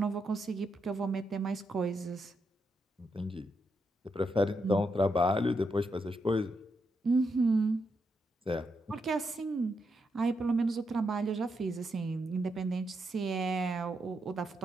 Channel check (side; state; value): both; normal; correlation 0.82